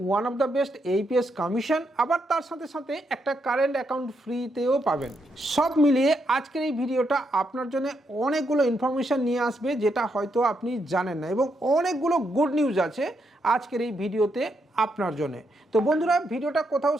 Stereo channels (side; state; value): both; normal; correlation 0.79